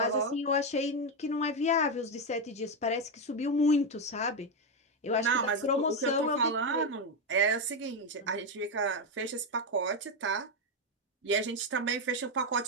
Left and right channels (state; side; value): normal; both; correlation 0.07